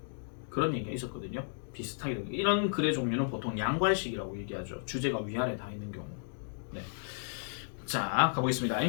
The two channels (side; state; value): right; silent; digital silence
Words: 그런 얘기가 있었거든요. 비슷하게. 이런 글의 종류는 보통 양괄식이라고 얘기하죠. 주제가 위아래 다 있는 경우. 네. 자, 가보겠습니다.